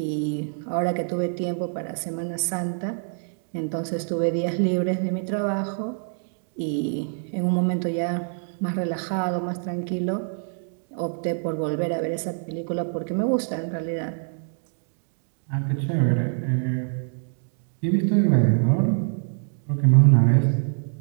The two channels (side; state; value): left; silent; 61 dB below the other